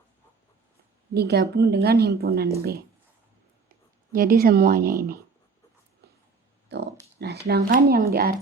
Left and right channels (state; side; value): quieter; left; 4.7 dB